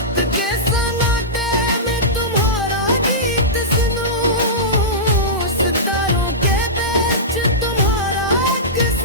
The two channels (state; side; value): normal; both; correlation -0.16